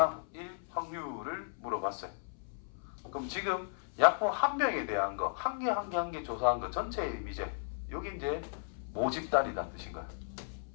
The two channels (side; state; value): right; silent; 54 dB below the other